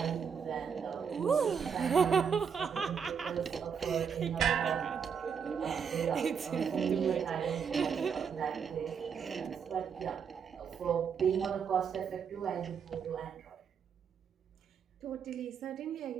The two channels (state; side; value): quieter; left; 6.8 dB